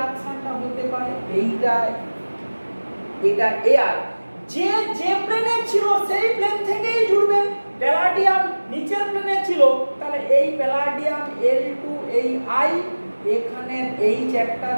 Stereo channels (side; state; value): both; inverted; correlation -1.00